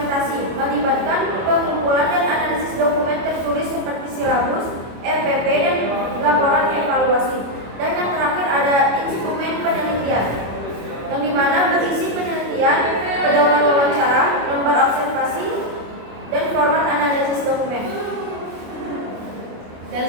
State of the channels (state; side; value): late; left; 25 ms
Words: melibatkan pengumpulan dan analisis dokumen tertulis seperti silabus, RPP, dan laporan evaluasi. Dan yang terakhir ada instrumen penelitian, yang dimana berisi penelitian, pedoman wawancara, lembar observasi, dan format analisis dokumen. Dan